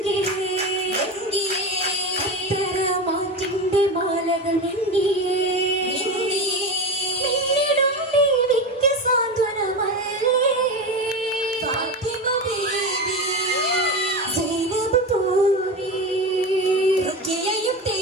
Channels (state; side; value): normal; both; correlation 0.22